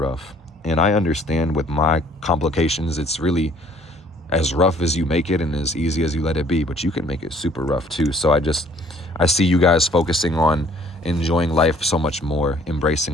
And I understand with my complications, it's really as rough as you make it and as easy as you let it be, but you can make it super rough too. So I see you guys focusing on enjoying life so much more,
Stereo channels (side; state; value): both; normal; correlation 0.58